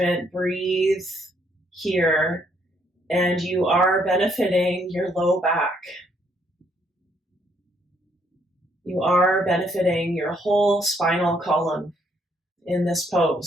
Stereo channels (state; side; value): normal; both; correlation 0.70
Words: breathe here, and you are benefiting your low back. You are benefiting your whole spinal column in this